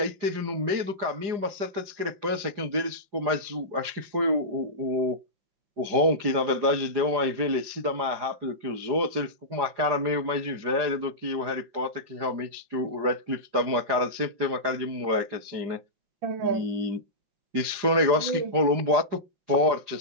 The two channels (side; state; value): left; late; 4.9 ms